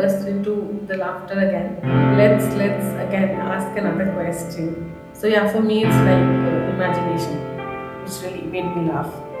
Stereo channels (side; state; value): both; identical; correlation 1.00